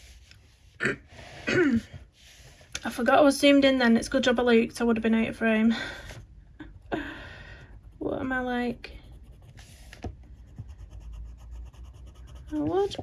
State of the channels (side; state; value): both; identical; correlation 1.00